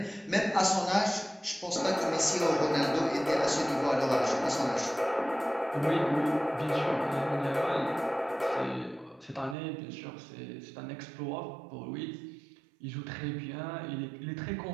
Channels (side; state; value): left; drops out; at 9.6 s